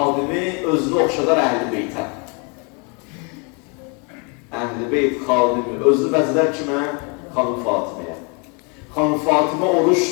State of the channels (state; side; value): quieter; right; 33.8 dB